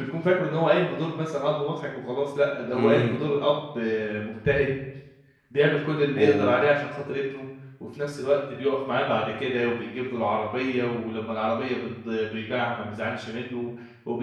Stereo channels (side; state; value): both; identical; correlation 1.00